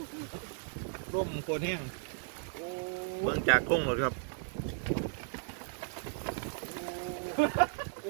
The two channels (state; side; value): silent; left; 54 dB below the other